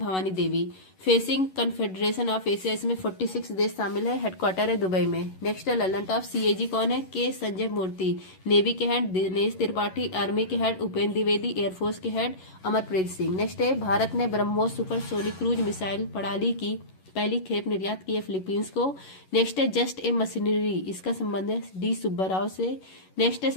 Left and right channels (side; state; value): right; late; 11 ms